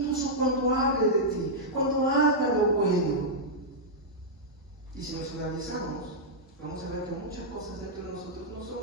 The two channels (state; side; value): normal; both; correlation -0.08